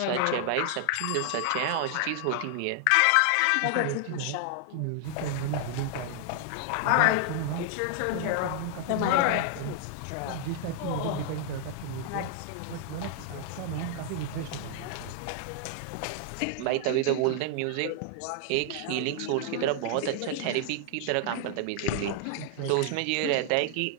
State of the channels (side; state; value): both; different; correlation 0.00